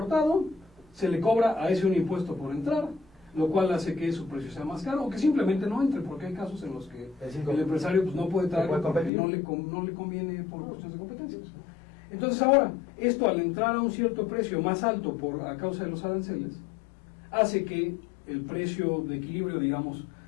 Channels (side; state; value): right; drops out; at 9.1 s